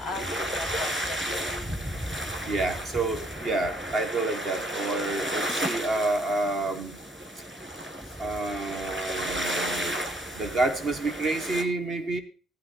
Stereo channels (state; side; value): normal; both; correlation 0.65